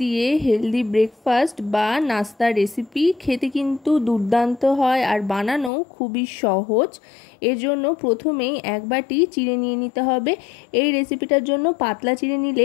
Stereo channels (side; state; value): right; drops out; at 5.7 s